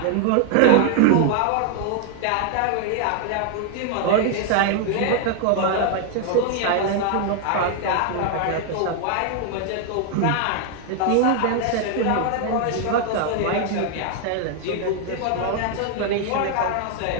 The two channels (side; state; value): both; different; correlation 0.00